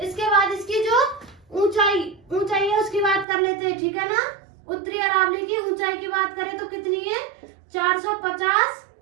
इसके बाद इसकी जो ऊंचाई है उसकी बात कर लेते हैं। ठीक है ना। उत्तरी अरावली की ऊंचाई की बात करें तो कितनी है? 450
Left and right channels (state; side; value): drops out; left; at 3.2 s